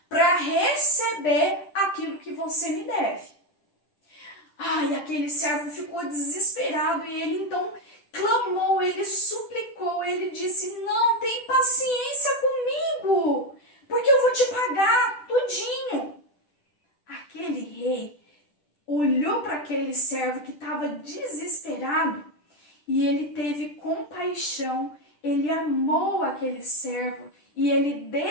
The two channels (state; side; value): late; right; 10 ms